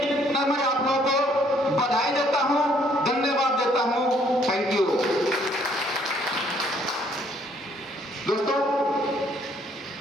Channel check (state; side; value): normal; both; correlation 0.65